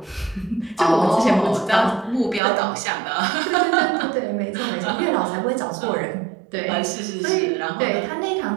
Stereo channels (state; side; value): drops out; left; at 2.4 s